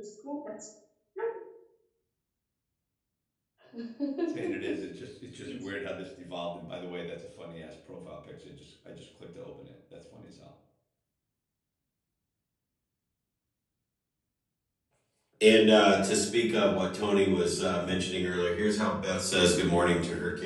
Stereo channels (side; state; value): both; identical; correlation 1.00